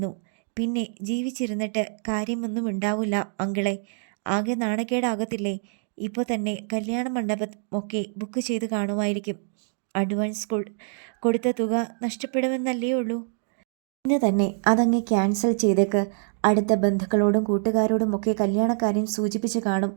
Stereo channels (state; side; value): silent; left; digital silence